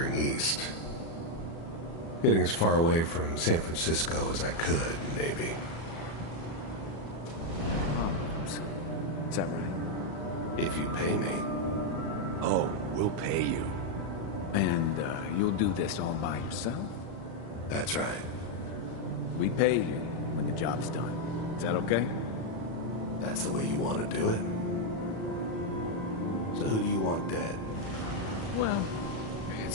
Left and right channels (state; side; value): late; right; 36 ms